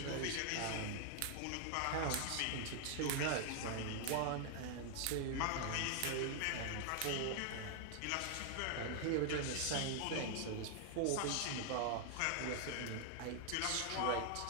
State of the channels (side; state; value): both; different; correlation 0.00